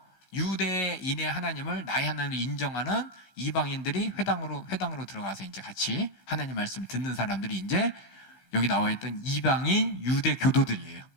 유대인의 하나님을 나의 하나님을 인정하는 이방인들이 회당으로 들어가서 이제 같이 하나님 말씀을 듣는 사람들이 이제 여기 나와 있던 이방인 유대 교도들이에요.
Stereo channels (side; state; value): right; late; 15 ms